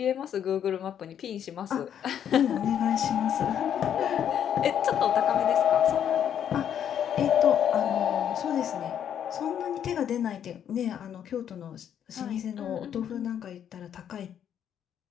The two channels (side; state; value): right; quieter; 9.3 dB